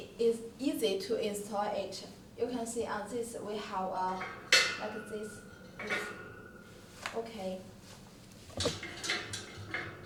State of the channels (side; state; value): both; identical; correlation 1.00